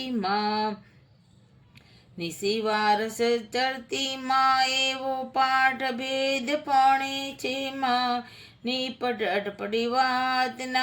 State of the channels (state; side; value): identical; both; correlation 1.00